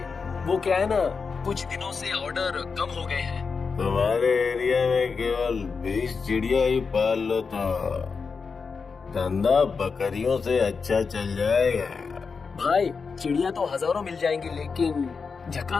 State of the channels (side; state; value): right; quieter; 5.1 dB